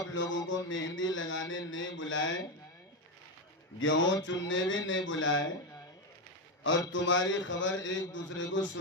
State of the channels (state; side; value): normal; both; correlation 0.10